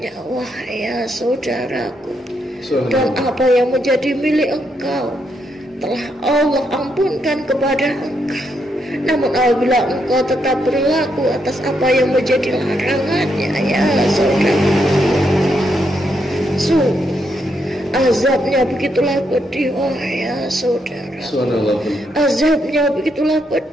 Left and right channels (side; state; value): both; normal; correlation 0.78